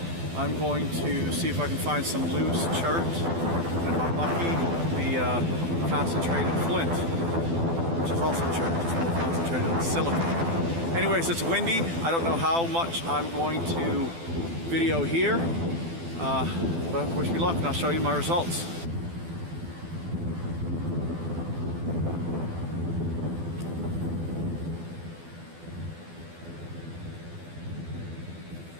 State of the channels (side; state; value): left; late; 12 ms